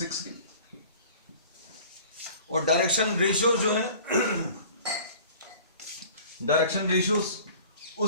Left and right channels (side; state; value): both; inverted; correlation -0.46